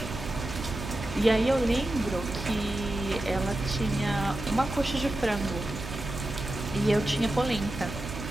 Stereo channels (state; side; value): noise; right; hum, 9 dB below the sound